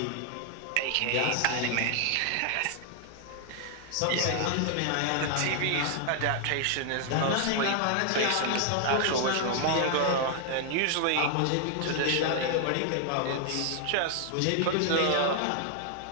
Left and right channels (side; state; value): both; different; correlation 0.00